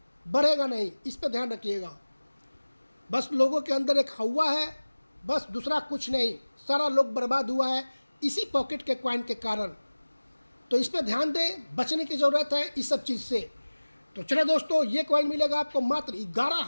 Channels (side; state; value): both; inverted; correlation -1.00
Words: बढ़ेगा नहीं। इस पर ध्यान रखिएगा। बस लोगों के अंदर एक हवा है, बस दूसरा कुछ नहीं। सारा लोग बर्बाद हुआ है इसी पॉकेट के कॉइन के कारण। तो इस पर ध्यान दें, बचने की ज़रूरत है इस सब चीज़ से। तो चलो दोस्तों, ये कॉइन मिलेगा आपको मात्र